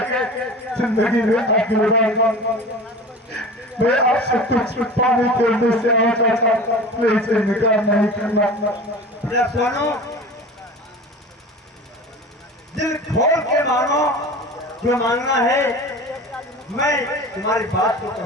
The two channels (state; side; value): normal; both; correlation 0.36